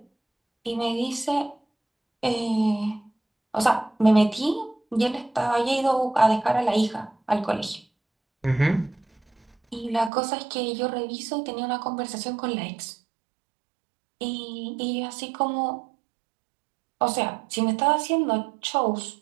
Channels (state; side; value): drops out; left; at 10.1 s